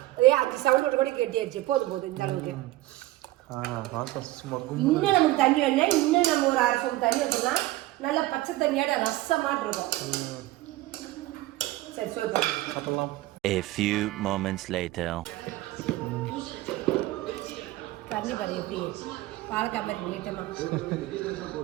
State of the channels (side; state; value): left; quieter; 17.4 dB